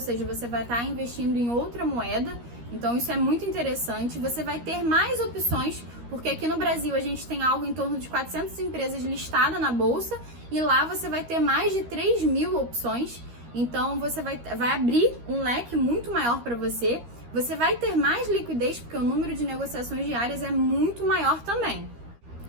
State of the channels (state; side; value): late; left; 13 ms